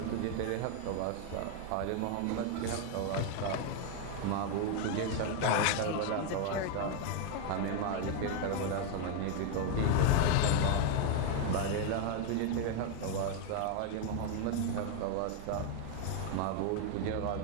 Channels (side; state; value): both; different; correlation 0.01